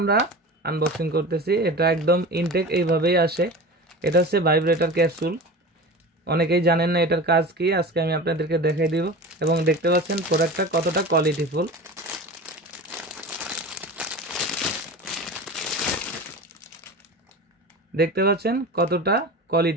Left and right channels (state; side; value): normal; both; correlation 0.32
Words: আনবক্সিং করতেছি। এটা একদম ইনটেক এইভাবেই আসে। এটা হচ্ছে ভাইব্রেটর ক্যাপসুল। অনেকেই জানেন না এটার কাজ কি, আজকে আমি আপনাদেরকে দেখাই দিব। এবং দেখতে পাচ্ছেন প্রোডাক্টটা কতটা কোয়ালিটিফুল। দেখতে পাচ্ছেন কতটা